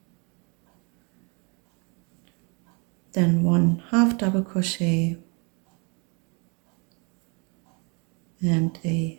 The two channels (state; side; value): quieter; left; 32.8 dB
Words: then 1 half double crochet, and a